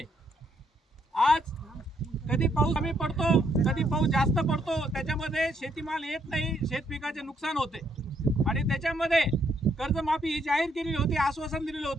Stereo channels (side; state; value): both; normal; correlation 0.72